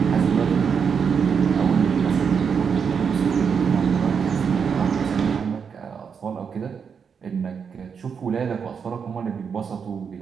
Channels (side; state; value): left; quieter; 6.5 dB